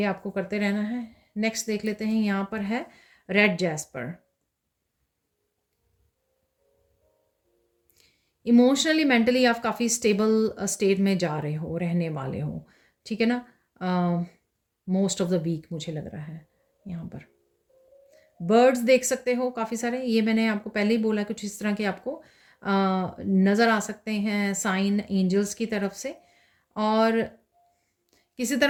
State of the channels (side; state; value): both; identical; correlation 1.00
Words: आपको करते रहना है। नेक्स्ट देख लेते हैं, यहाँ पर है रेड जैस्पर। इमोशनली मेंटली आप काफ़ी स्टेबल स्टेट में जा रहे हो, रहने वाले हो, ठीक है ना? मोस्ट ऑफ द वीक मुझे लग रहा है यहाँ पर। बर्ड्स देख सकते हो काफ़ी सारे, ये मैंने आपको पहले ही बोला, कुछ इस तरह के आपको नज़र आ सकते हैं साइन एंजल्स की तरफ से। और किसी